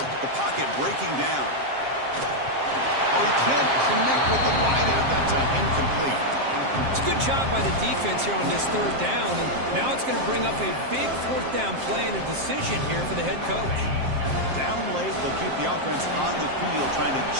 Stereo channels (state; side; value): late; left; 7.5 ms